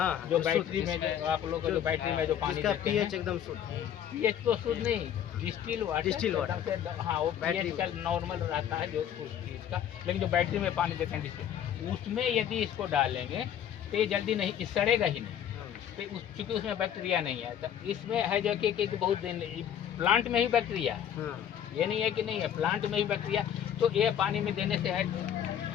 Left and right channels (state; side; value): quieter; right; 9.7 dB